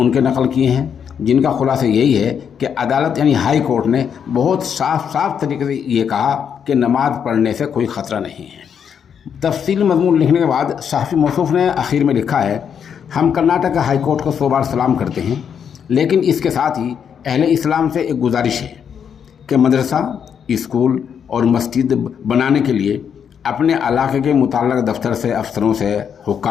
नकल किए हैं, जिनका खुलासा यही है कि अदालत यानी हाई कोर्ट ने बहुत साफ तरीके से ये कहा कि नमाज़ पढ़ने से कोई ख़तरा नहीं है। तफसील मज़मून लिखने के बाद सहाफ़ी मौसूफ़ ने आखिर में लिखा है, हम कर्नाटक हाई कोर्ट को 100 बार सलाम करते हैं, लेकिन इसके साथ ही अहले इस्लाम से एक गुजारिश है कि मदरसा, स्कूल और मस्जिद बनाने के लिए अपने इलाके के मुतल्लिक़ दफ्तर से, अफसरों से,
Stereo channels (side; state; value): right; quieter; 7.7 dB